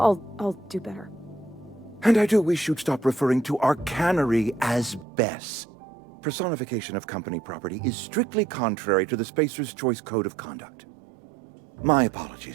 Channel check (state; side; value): drops out; left; at 5.1 s